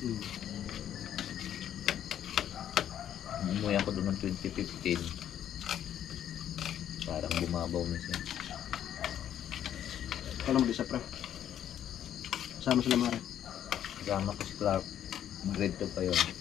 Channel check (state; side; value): quieter; right; 10.4 dB